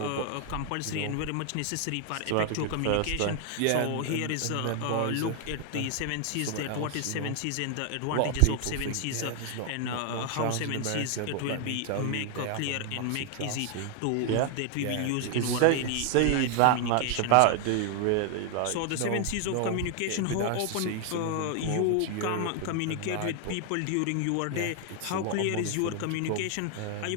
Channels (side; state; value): both; different; correlation 0.00